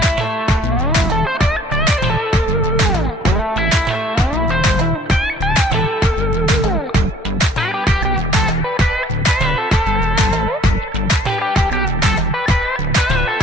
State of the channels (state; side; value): normal; both; correlation 0.56